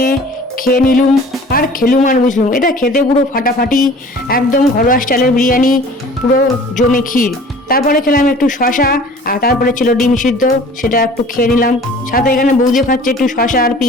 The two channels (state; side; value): normal; both; correlation 0.47